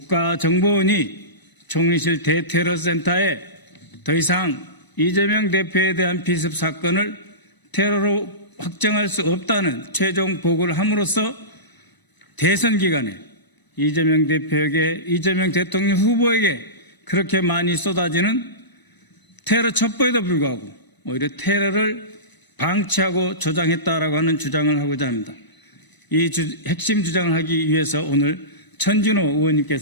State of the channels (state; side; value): late; right; 1.0 ms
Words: 총리실 대테러센터에 더 이상 이재명 대표에 대한 피습 사건을 테러로 확정할 수 없다는 최종 보고를 함으로써 대선 기간에 이재명 대표에게, 이재명 대통령 후보에게 그렇게 많이 쏟아지는 테러 첩보에도 불구하고 오히려 테러를 방치하고 조장했다라고 하는 주장을 하고자 합니다. 이 핵심 주장을 하기 위해서 오늘 천준호